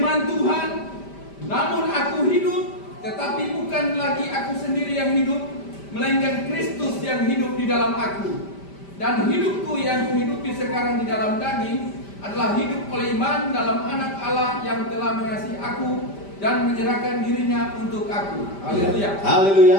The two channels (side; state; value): right; late; 5.1 ms